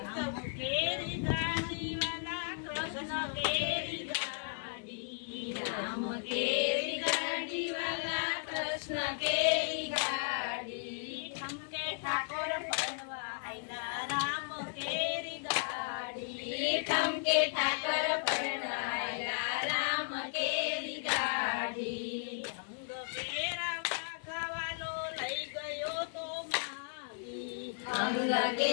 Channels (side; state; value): right; silent; 54 dB below the other